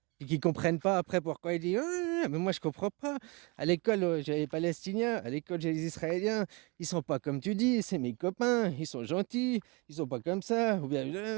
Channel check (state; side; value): quieter; left; 28.1 dB